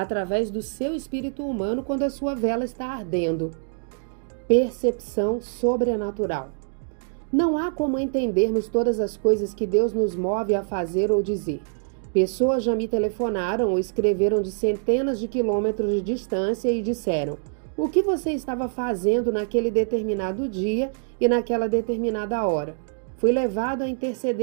do seu espírito humano quando a sua vela está ardendo. Percepção sobrenatural. Não há como entendermos todas as coisas que Deus nos move a fazer ou dizer. Pessoas já me telefonaram ou escreveram de centenas de quilômetros de distância e disseram: o que você estava fazendo naquele determinado dia e naquela determinada hora? Fui levado a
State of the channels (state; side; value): silent; left; 62 dB below the other